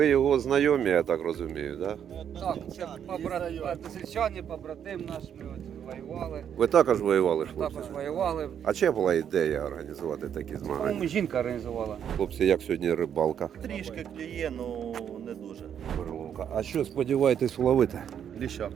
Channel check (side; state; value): left; quieter; 8.8 dB